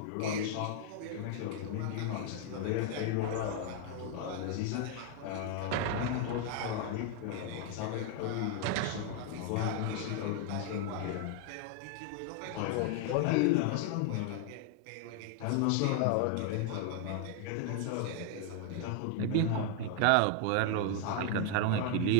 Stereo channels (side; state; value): both; different; correlation 0.00